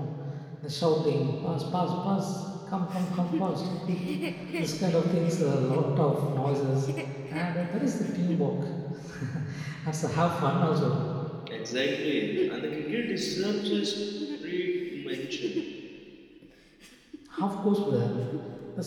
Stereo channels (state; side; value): identical; both; correlation 1.00